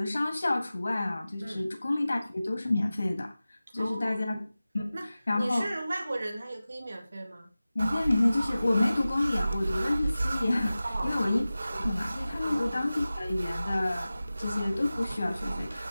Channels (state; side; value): inverted; both; correlation -0.96